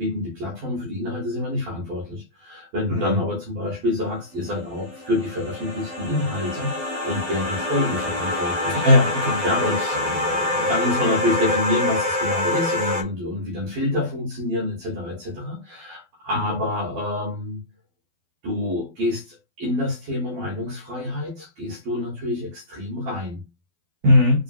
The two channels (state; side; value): late; left; 12 ms